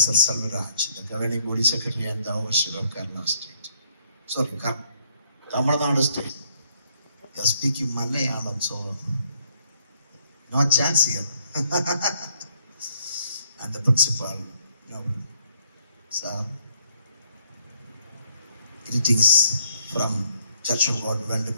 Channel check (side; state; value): both; inverted; correlation -0.68